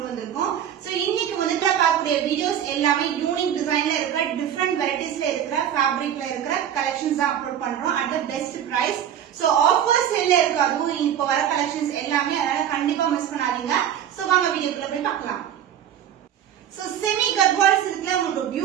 வந்திருக்கோம். சோ இன்னைக்கு வந்து பார்க்கக்கூடிய வீடியோஸ் எல்லாமே யூனிக் டிசைன்ல இருக்கிற, டிஃபரெண்ட் வெரைட்டிஸ்ல இருக்கிற, ஃபேப்ரிக்ல இருக்கிற கலெக்ஷன்ஸ் தான் அப்லோட் பண்றோம் at the best price. So offer சேல்ல இருக்கு, அதுவும் இப்போ வர கலெக்ஷன்ஸ் எல்லாமே, அதனால கண்டிப்பா மிஸ் பண்ணாதீங்க. சோ வாங்க வீடியோக்குள்ள போய் பார்க்கலாம். சோ செமி கர்வால் சில்க்ல உங்களுக்கு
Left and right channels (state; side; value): quieter; left; 9.9 dB